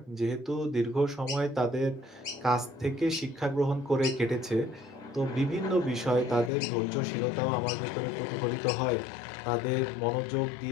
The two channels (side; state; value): right; drops out; at 6.5 s